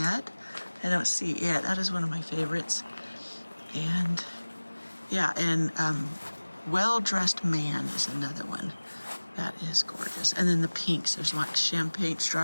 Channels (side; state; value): both; inverted; correlation -1.00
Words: I don't see it. That is one of my favorites. And yeah, and Well-Dressed Man is another one. That is gorgeous. And then the pinks. There's like champagne,